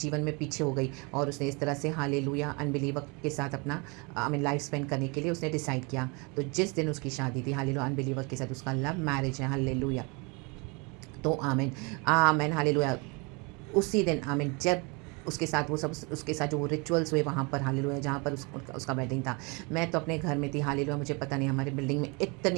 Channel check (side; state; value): left; quieter; 29.9 dB